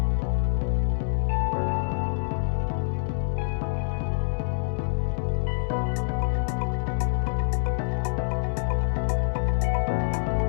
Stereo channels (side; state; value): right; silent; digital silence